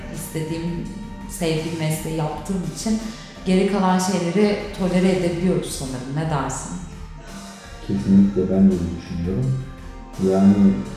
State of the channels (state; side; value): identical; both; correlation 1.00